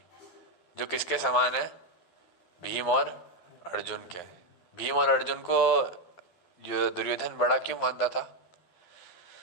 जो किसके समान है? भीम और अर्जुन के। भीम और अर्जुन को जो दुर्योधन बड़ा क्यों मानता था?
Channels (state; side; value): late; right; 12 ms